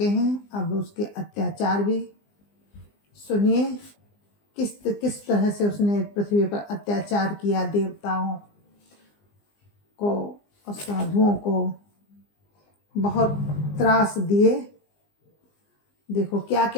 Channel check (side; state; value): right; late; 20 ms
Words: हैं। अब उसके अत्याचार भी सुनिए, किस तरह से उसने पृथ्वी पर अत्याचार किया, देवताओं को और साधुओं को बहुत त्रास दिए। देखो क्या